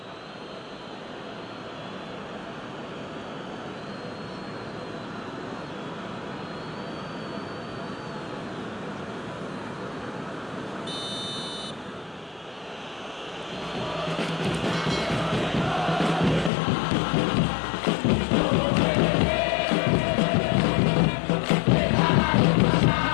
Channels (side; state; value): right; drops out; at 16.5 s